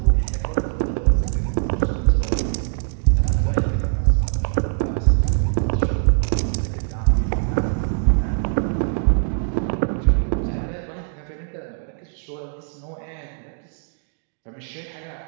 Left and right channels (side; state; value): left; silent; 64 dB below the other